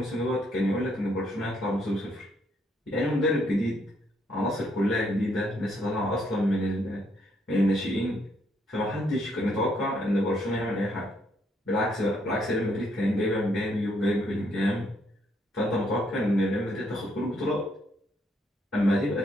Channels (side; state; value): both; normal; correlation 0.72